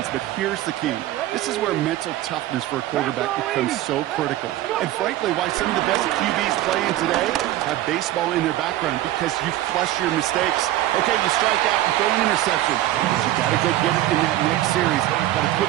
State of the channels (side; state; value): left; quieter; 14.5 dB